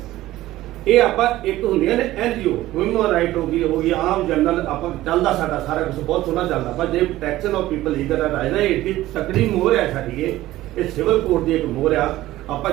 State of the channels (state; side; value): quieter; left; 15.8 dB